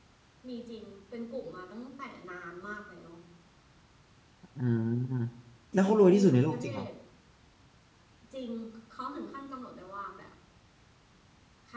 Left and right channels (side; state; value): both; identical; correlation 1.00